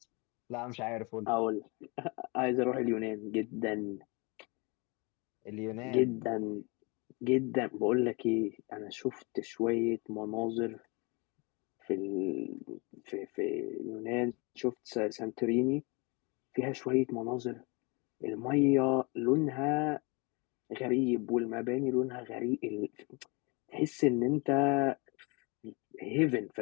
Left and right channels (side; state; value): right; quieter; 29.4 dB